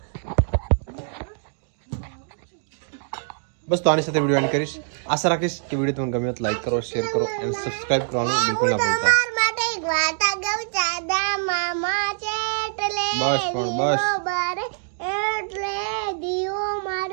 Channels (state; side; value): silent; left; digital silence